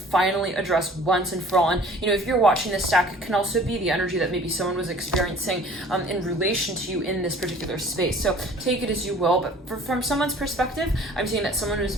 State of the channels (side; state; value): both; normal; correlation 0.50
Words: address once and for all. And if you're watching this stack, it can also be the energy that maybe someone was experiencing in relation to you in this particular space. So take it as you will, but from someone's perspective, I'm seeing that someone was